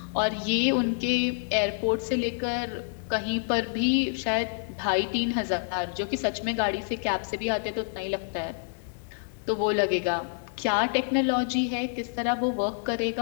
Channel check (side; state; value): right; silent; digital silence